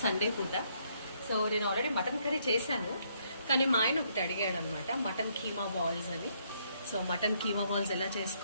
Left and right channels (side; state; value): both; inverted; correlation -0.71